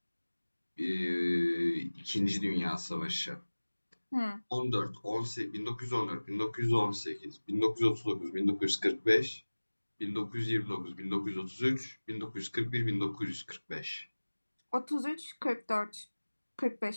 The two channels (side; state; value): both; inverted; correlation -1.00